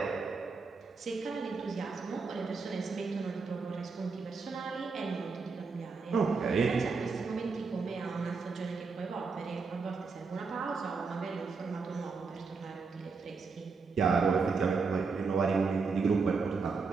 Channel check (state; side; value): quieter; left; 4.7 dB